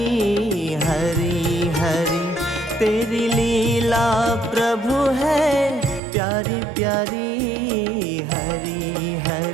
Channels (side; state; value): left; drops out; at 6.0 s